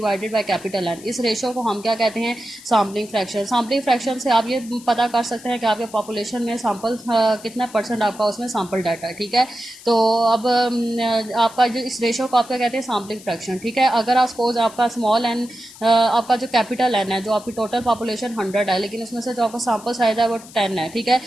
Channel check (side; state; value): left; noise; hiss, 19 dB below the sound